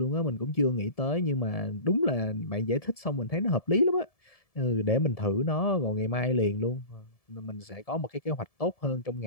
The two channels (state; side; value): late; right; 1.7 ms